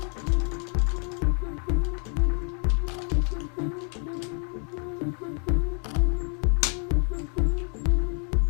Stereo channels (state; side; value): quieter; right; 39.9 dB